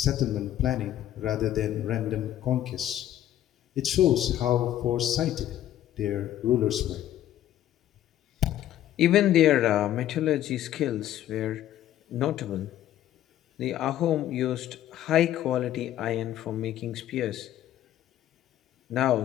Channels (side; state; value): right; quieter; 12.4 dB